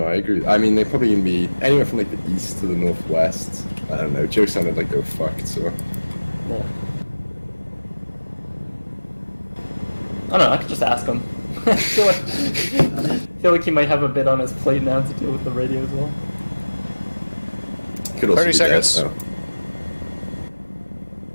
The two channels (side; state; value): both; inverted; correlation -1.00